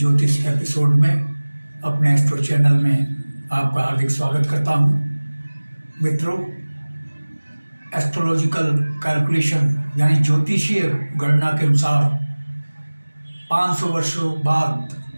एपिसोड में अपने एस्ट्रो चैनल में आपका हार्दिक स्वागत करता हूं। मित्रों, एस्ट्रोलॉजिकल कैलकुलेशन यानी ज्योतिषीय गणना के अनुसार 500 वर्षों बाद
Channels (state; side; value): inverted; both; correlation -1.00